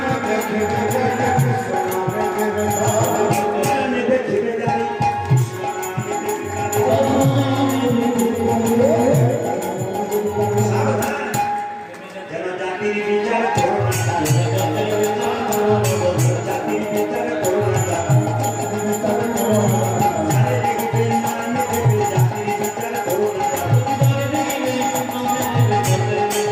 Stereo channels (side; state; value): both; identical; correlation 1.00